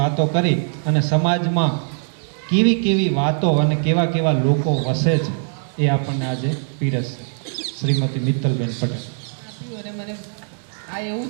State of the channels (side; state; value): left; silent; 62 dB below the other